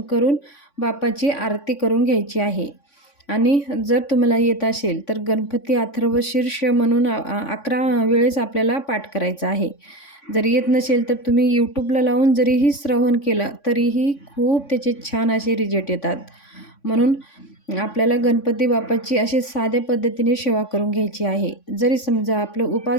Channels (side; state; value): right; late; 3.5 ms